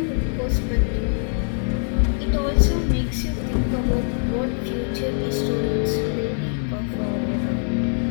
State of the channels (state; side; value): silent; right; 55 dB below the other